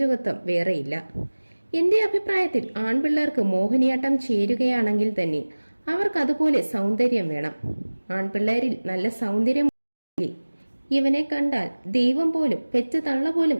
വേറെയില്ല. എന്റെ അഭിപ്രായത്തിൽ ആൺപിള്ളേർക്ക് മോഹിനിയാട്ടം ചേരുകയാണെങ്കിൽ തന്നെ അവർക്ക് അതുപോലെ സൗന്ദര്യം വേണം. ആൺപിള്ളേരിൽ നല്ല സൗന്ദര്യം ഇവനെ കണ്ടാൽ ദൈവം പോലും പെറ്റ തള്ള പോലും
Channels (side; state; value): both; inverted; correlation -1.00